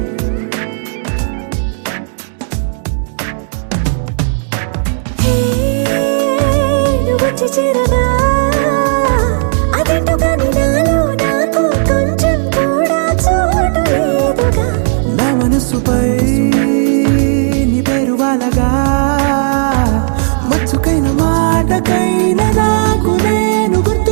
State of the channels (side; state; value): left; silent; 70 dB below the other